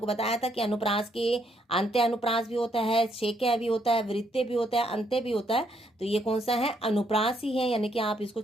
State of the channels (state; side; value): normal; both; correlation 0.73